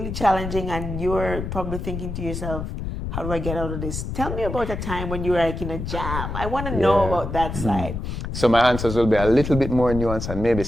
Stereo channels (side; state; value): left; noise; rumble, 5 dB below the sound